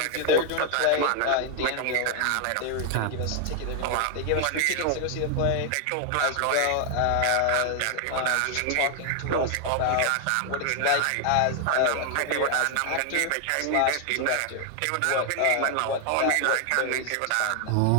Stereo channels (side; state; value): both; different; correlation 0.00